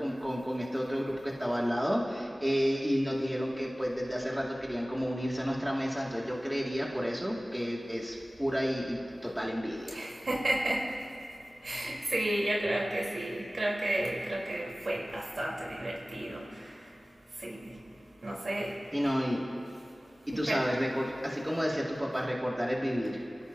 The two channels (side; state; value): both; normal; correlation 0.98